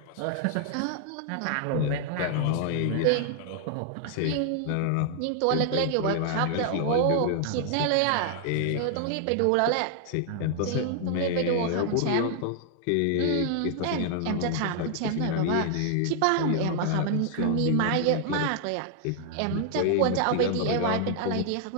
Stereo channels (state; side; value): different; both; correlation 0.00